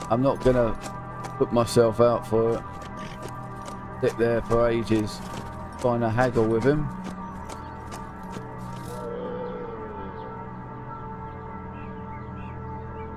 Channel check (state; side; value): identical; both; correlation 1.00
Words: I'm not gonna put myself out for it. Sit there for ages trying to haggle with him.